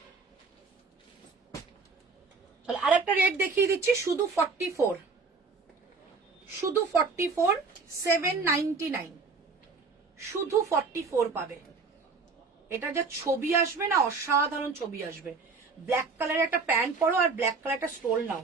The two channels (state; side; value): quieter; left; 4.4 dB